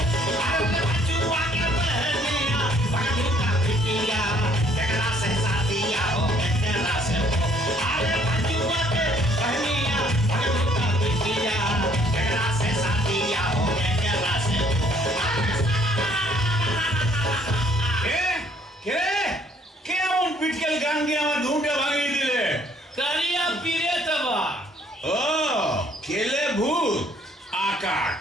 গান গিয়ে আমার ঘুমটা ভাঙিয়ে দিলে কারিয়া পীরে তবা ও কেলে ভূত আকাট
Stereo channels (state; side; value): normal; both; correlation 0.62